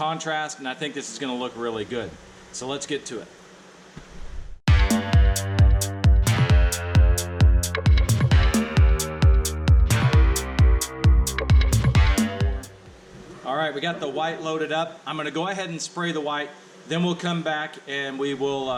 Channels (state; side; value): identical; both; correlation 1.00